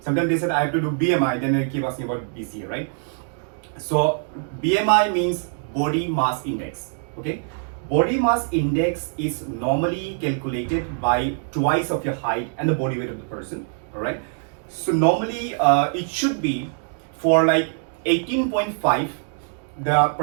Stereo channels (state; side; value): silent; left; 63 dB below the other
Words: they said I have to do BMI, then they keep asking about BCA, right? So BMI means body mass index, okay? Body mass index is normally calculated by twice of your height and the body weight of the person, all right? So normally it should be for like 18.5, the